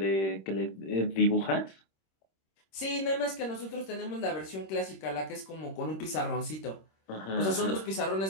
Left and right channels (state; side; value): late; right; 26 ms